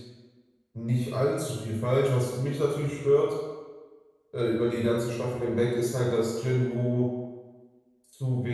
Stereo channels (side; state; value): both; identical; correlation 1.00